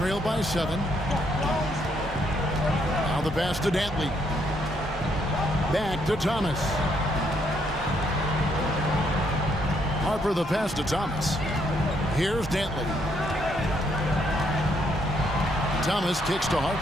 by 7. Now the pass to Dantley. Back to Thomas. Harper the pass to Thomas. Here's Dantley. Thomas kicks to Harper.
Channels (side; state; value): both; normal; correlation 0.72